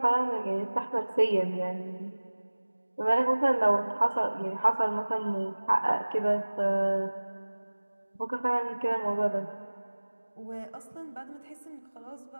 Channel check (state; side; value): inverted; both; correlation -1.00